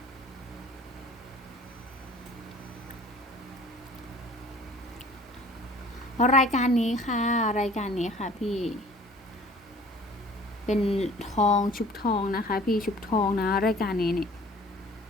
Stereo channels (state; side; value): normal; both; correlation 0.50